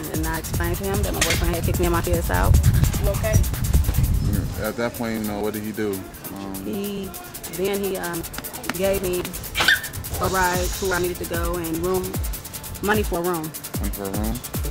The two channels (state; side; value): identical; both; correlation 1.00